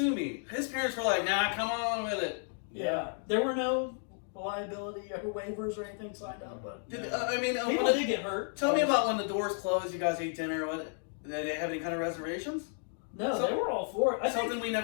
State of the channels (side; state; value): right; silent; 56 dB below the other